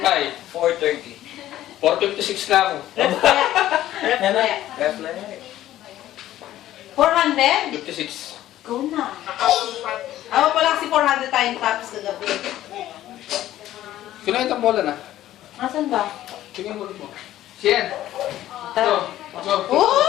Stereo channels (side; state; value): right; quieter; 13.6 dB